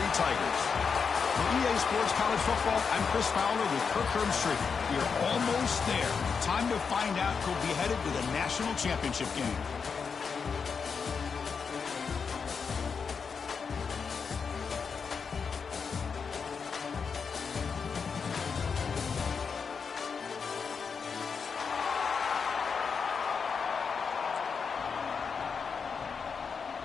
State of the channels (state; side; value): quieter; right; 5.8 dB